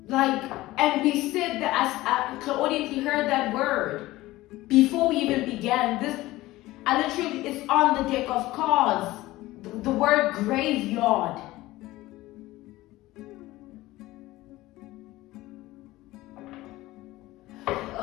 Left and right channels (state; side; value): quieter; right; 17.8 dB